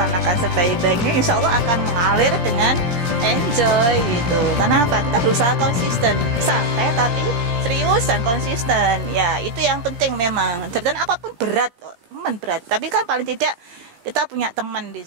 sebaik-baiknya, insya Allah akan mengalir dengan enjoy gitu. Karena apa? Kita berusaha konsisten, santai tapi serius dan konsisten. Ya, itu yang penting memang. Jabatan apapun berat, teman berat. Tapi kan paling tidak kita punya teman di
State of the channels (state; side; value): late; left; 17 ms